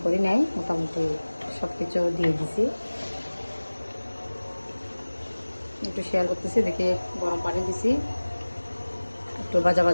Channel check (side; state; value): both; inverted; correlation -1.00